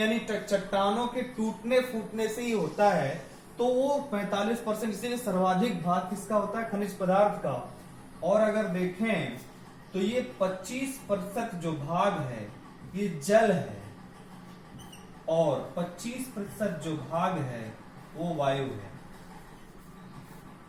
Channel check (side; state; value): both; identical; correlation 1.00